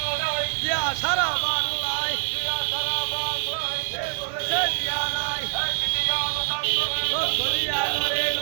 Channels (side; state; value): left; silent; digital silence